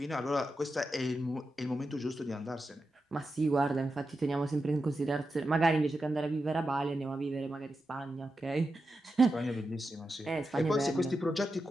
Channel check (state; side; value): normal; both; correlation 0.89